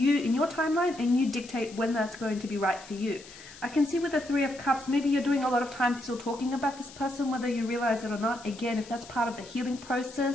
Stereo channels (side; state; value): left; noise; hiss, 18 dB below the sound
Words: your timeline, and you dictate when that's going to be right for you. I can see with the Three of Cups, maybe you're doing a lot of time still talking about this person, whether you realize it or not. Again, if that's part of the healing